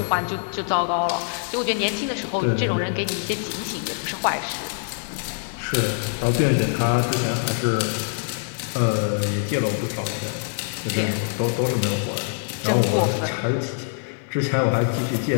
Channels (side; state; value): right; silent; digital silence